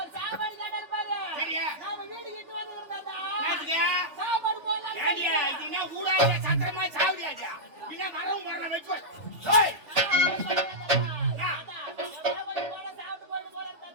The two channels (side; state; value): left; late; 3.4 ms